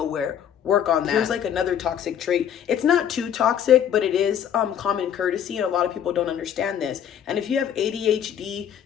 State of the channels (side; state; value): right; quieter; 9.3 dB